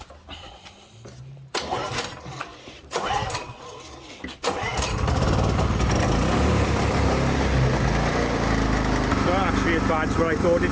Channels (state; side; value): identical; both; correlation 1.00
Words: As bad as what I thought